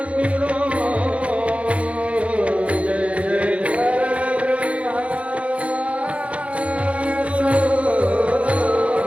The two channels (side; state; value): left; late; 0.063 ms